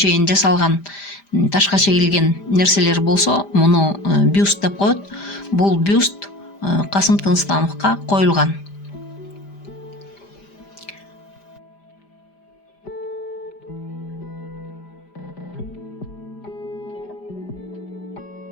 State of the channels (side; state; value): right; late; 5.0 ms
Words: жасалган ташка чегилген нерселер болсо, муну бюст деп коет. Бул бюст Касым Тыныстановго коюлган.